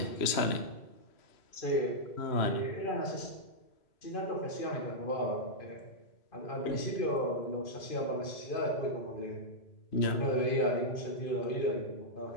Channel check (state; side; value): late; right; 3.0 ms